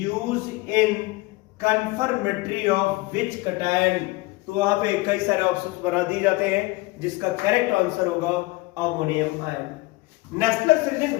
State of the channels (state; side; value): quieter; right; 21.6 dB